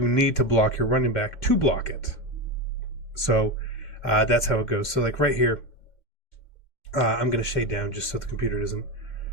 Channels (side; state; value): right; late; 2.1 ms